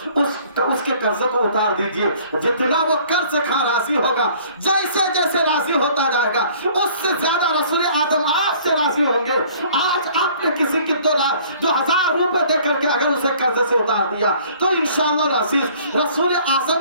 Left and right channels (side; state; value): both; inverted; correlation -0.54